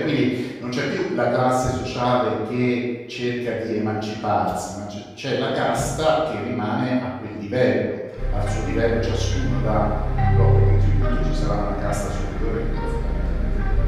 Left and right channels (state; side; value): identical; both; correlation 1.00